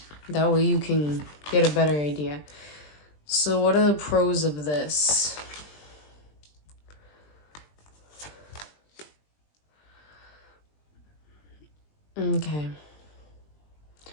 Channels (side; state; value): right; late; 20 ms